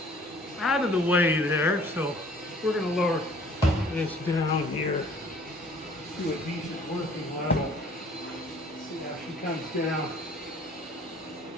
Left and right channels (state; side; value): normal; both; correlation 0.54